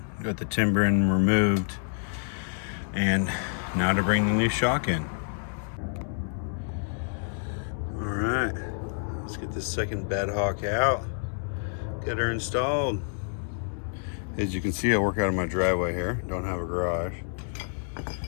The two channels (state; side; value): silent; right; digital silence